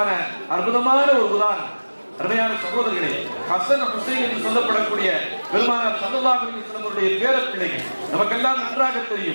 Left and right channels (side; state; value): both; inverted; correlation -1.00